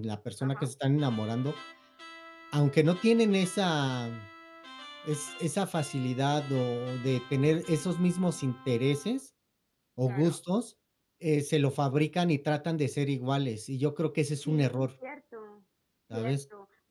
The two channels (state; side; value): identical; both; correlation 1.00